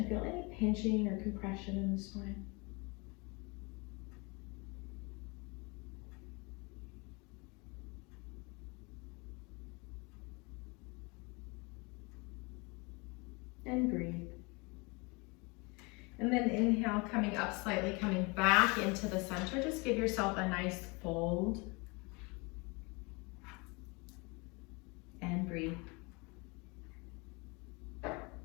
feel any pinching or compression in the spine. And breathe. And then inhale, coming up slightly, coming back into the center. Just give yourself a nice fold. And breathe.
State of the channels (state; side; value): quieter; right; 28.6 dB